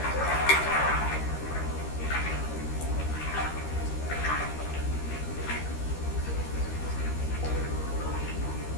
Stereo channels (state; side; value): late; right; 13 ms